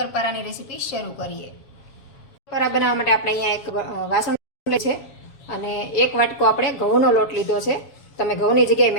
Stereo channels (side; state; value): right; late; 7.3 ms